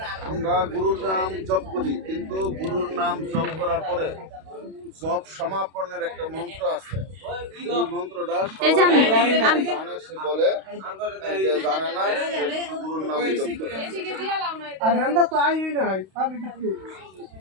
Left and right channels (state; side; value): late; left; 32 ms